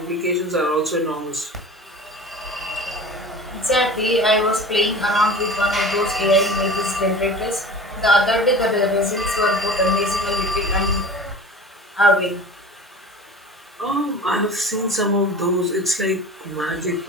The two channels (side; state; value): both; normal; correlation 0.38